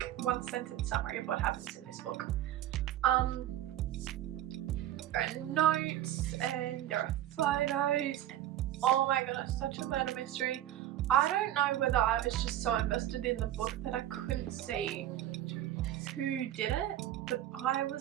one-sentence summary of what happens in this book. There are notes and there are photos and oh my goodness, such a murder mystery. I don't know whether I was just so invested in the book that I couldn't see who did it, but I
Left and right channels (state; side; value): quieter; left; 12.8 dB